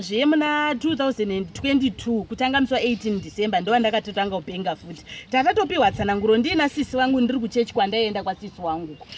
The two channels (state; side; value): identical; both; correlation 1.00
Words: muna 2022 kutanga musi wa18 December ndo ndakatotanga kupenga futi. Tatatopiwa tsananguro ndina sisi wangu ndiri kuchechi kwandaenda kwasisi wangu.